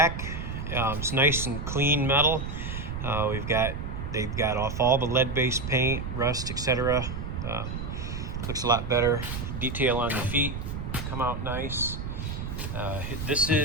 It's nice and clean metal. They've got off all the lead-based paint, rust, etc. Looks a lot better. Detail on the feet come out nice.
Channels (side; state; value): right; noise; rumble, 5 dB below the sound